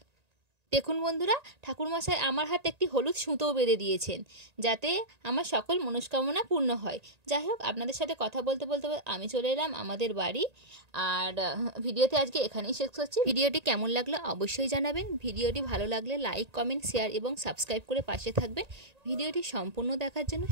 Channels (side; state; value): left; late; 1.9 ms